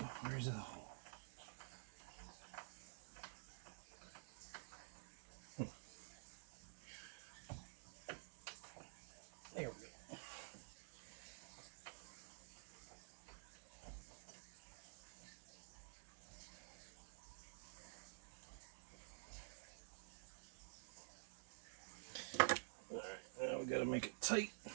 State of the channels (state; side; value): silent; left; digital silence